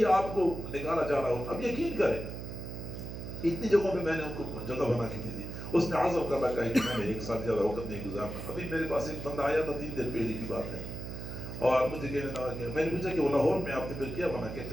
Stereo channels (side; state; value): right; noise; hum, 8 dB below the sound